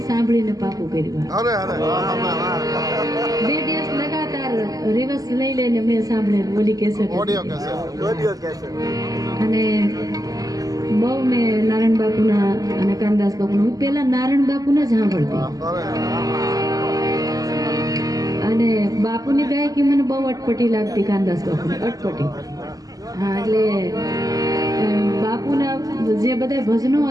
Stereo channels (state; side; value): late; left; 0.17 ms